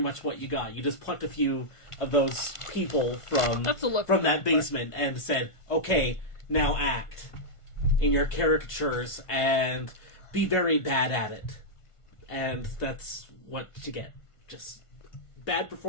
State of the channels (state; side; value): late; right; 1.5 ms